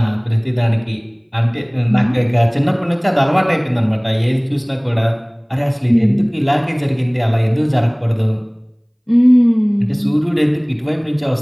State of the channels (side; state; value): both; identical; correlation 1.00